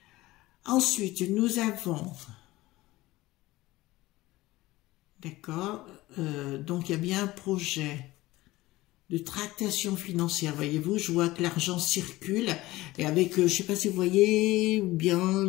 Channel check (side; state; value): right; quieter; 18.5 dB